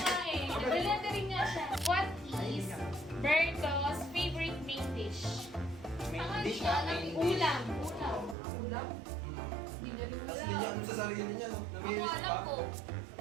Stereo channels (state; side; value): drops out; left; at 8.3 s